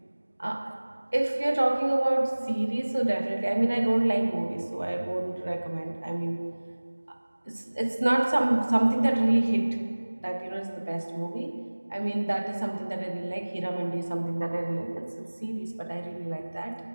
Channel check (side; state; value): both; inverted; correlation -1.00